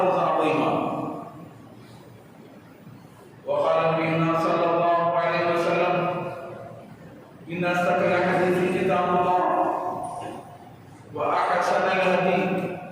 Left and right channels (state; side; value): identical; both; correlation 1.00